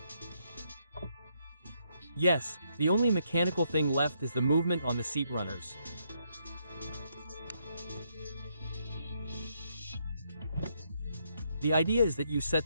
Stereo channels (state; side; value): inverted; both; correlation -0.75